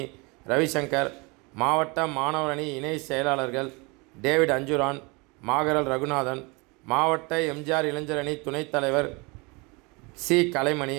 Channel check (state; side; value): quieter; left; 28.0 dB